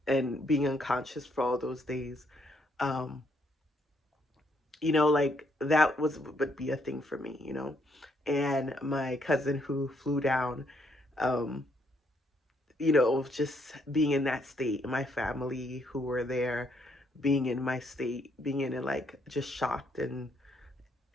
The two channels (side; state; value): both; normal; correlation 0.73